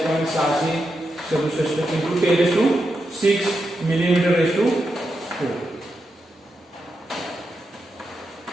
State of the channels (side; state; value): both; normal; correlation 0.86